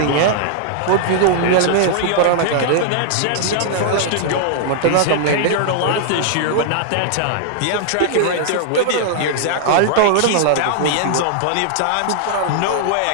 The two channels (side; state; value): both; different; correlation -0.01